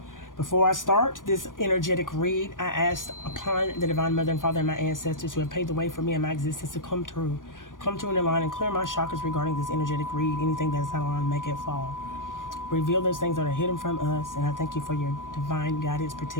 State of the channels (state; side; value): late; right; 0.88 ms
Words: Before I start this energetic read, I asked upon the Divine Mother and Father and my ancestors who have paved the way for me and my existence to come through in line and clear my chakras regarding this energetic read. Anything that is not aligned, make it fall. Reveal those things that are hidden from us, and I thank you for your divine guidance,